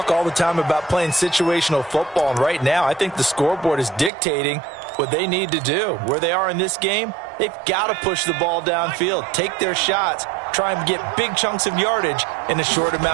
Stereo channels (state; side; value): drops out; left; at 4.1 s